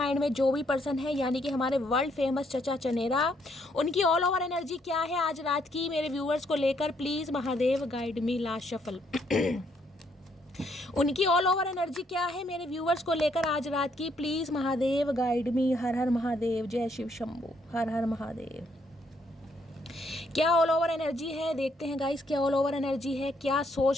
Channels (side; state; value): both; normal; correlation 0.71